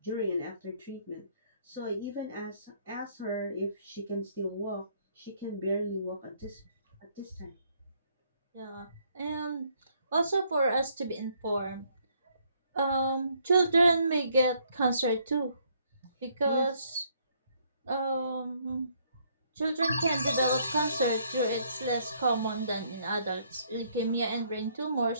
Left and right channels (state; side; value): inverted; both; correlation -0.68